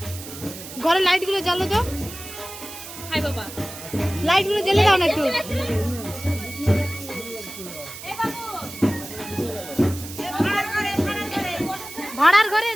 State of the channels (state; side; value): noise; right; hiss, 12 dB below the sound